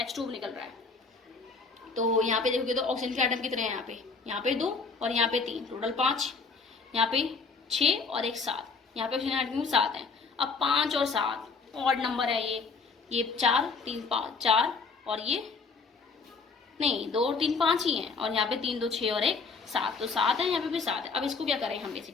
H2 निकल रहा है। तो यहाँ पे देखोगे तो ऑक्सीजन के एटम कितने हैं? यहाँ पे 2 और यहाँ पे 3, टोटल 5। यहाँ पे 6 और 1 7। यहाँ पे ऑक्सीजन एटम 7 है। अब 5 और 7 ऑड नंबर है ये 4 3 5 4 और ये नहीं 2 और 3 5 ही हैं और यहाँ पे 3 2 6 और 1 7, तो 7 है, यहाँ पे भी 7 है। अब इसको क्या करें हम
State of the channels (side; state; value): right; quieter; 4.7 dB